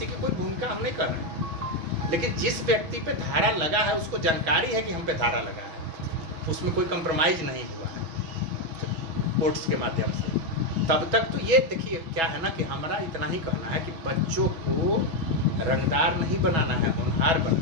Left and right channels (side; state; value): left; late; 6.1 ms